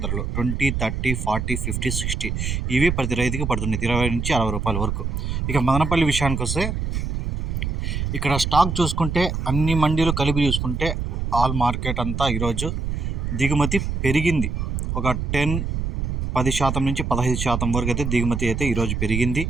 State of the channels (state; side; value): noise; right; rumble, 2 dB below the sound